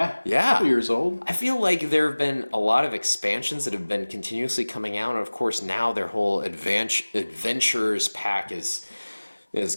Yeah. 2 years old. I feel like there have been a lot of expansions that have been continuously coming out, and of course now their whole adventurers pack has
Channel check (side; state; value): both; inverted; correlation -1.00